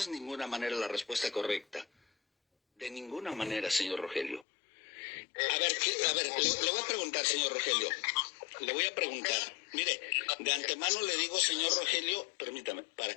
de ninguna manera la respuesta correcta. De ninguna manera, señor Rogelio. A ver, le voy a preguntar, señor Rogelio. Le voy a preguntar. Mire, de antemano le digo, señor Rogelio, permítame,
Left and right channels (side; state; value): right; drops out; at 4.5 s